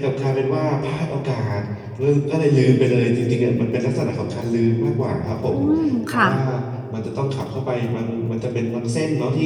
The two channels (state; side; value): identical; both; correlation 1.00